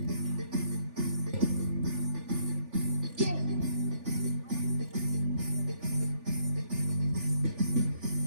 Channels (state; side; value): late; left; 3.4 ms